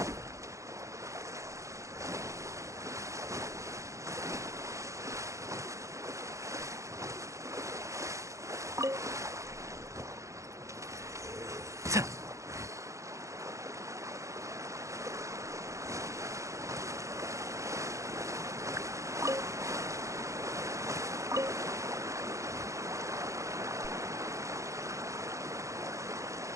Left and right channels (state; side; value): late; left; 0.15 ms